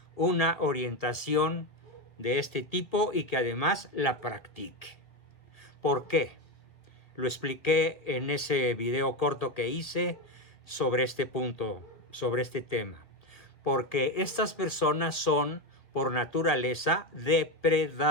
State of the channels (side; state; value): right; late; 1.8 ms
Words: una orientación de este tipo y que además la practique. ¿Por qué? Lo expliqué en ese video corto que hice sobre este punto, sobre este tema. Porque estas personas son, por naturaleza,